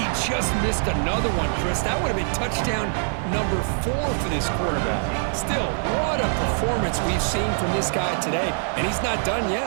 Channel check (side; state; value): left; silent; digital silence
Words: just missed another one, Chris. That would have been touchdown number 4 for this quarterback. Still, what a performance we've seen from this guy today, and he's not done